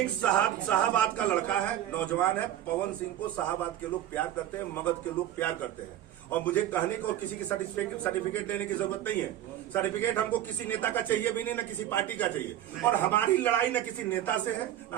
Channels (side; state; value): left; quieter; 12.1 dB